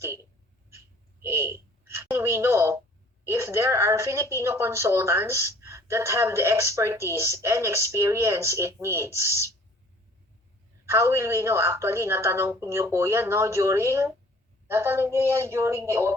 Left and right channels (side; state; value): both; normal; correlation 0.53